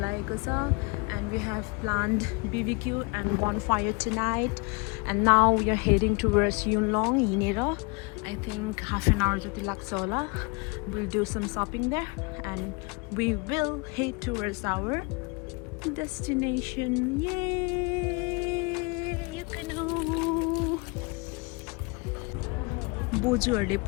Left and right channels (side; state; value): right; quieter; 29.7 dB